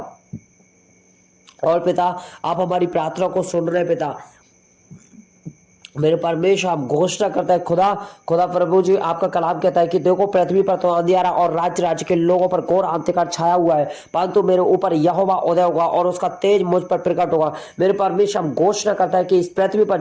और पिता आप हमारी प्रार्थना को सुन रहे पिता। मेरे परमेश्वर आप घोषणा करता है खुदा प्रभु जी आपका कलाम कहता है कि देखो पृथ्वी पर तो अंधियारा और राज्य के लोगों पर घोर अंधकार छाया हुआ है, परंतु मेरे ऊपर यहोवा उदय होगा और उसका तेज मुझ पर प्रकट होगा। मेरे परमेश्वर आप घोषणा करता है कि इस पृथ्वी पर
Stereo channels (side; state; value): both; identical; correlation 1.00